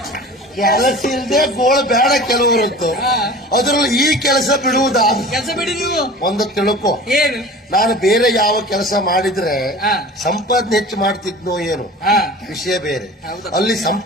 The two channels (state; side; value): normal; both; correlation 0.39